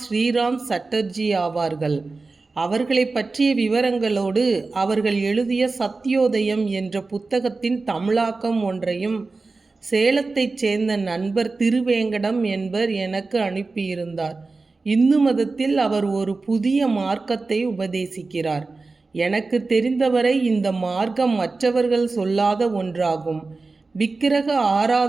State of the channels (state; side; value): quieter; left; 3.8 dB